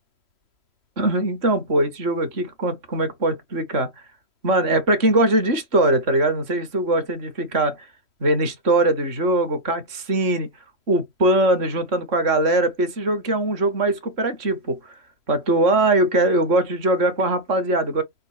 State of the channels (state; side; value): late; left; 3.1 ms